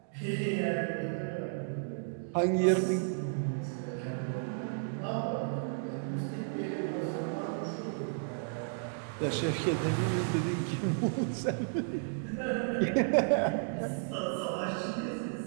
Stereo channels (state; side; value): silent; left; digital silence